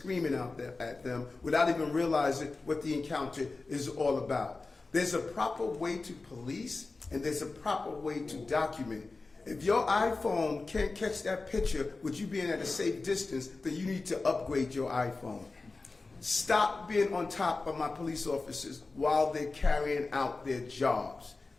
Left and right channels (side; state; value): right; quieter; 3.7 dB